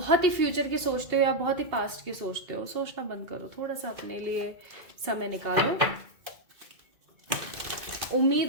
ही फ्यूचर की सोचते हो या बहुत ही पास्ट की सोचते हो। सोचना बंद करो, थोड़ा सा अपने लिए समय निकालो,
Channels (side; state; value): left; late; 2.2 ms